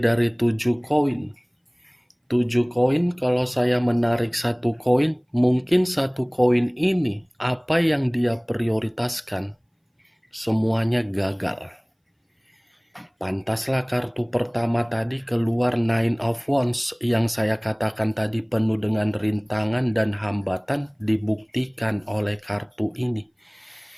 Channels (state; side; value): identical; both; correlation 1.00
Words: 7 koin. 7 koin, kalau saya menarik satu koin, mungkin satu koin ini apa yang dia prioritaskan semuanya gagal. Pantaslah kartu pertama tadi keluar Nine of Wands yang saya katakan tadi penuh dengan rintangan dan hambatan dibuktikan oleh kartu ini.